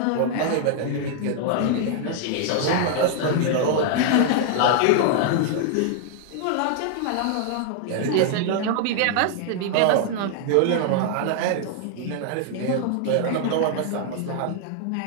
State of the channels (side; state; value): both; different; correlation 0.00